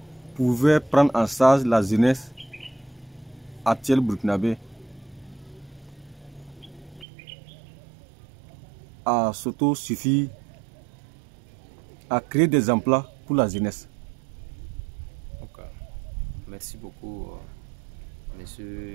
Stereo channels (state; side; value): drops out; left; at 7.1 s